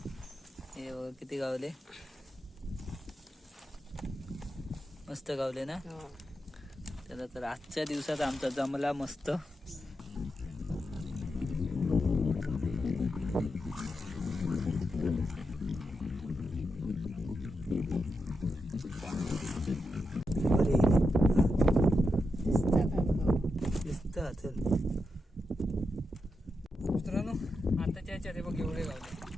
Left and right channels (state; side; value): normal; both; correlation 0.86